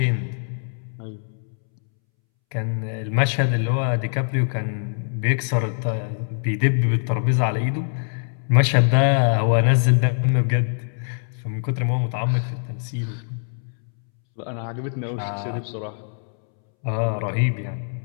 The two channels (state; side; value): silent; right; 63 dB below the other